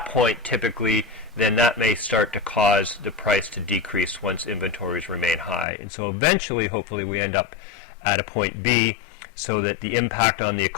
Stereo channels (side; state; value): right; drops out; at 5.7 s